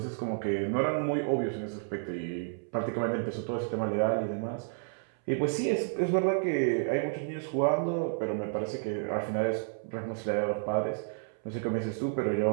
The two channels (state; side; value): silent; left; 57 dB below the other